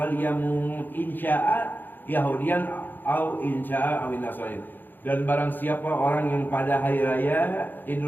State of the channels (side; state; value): right; late; 0.090 ms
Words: insya'a yahudiyan au insya'a awin nasrani. Dan barang siapa orang yang pada hari raya Idul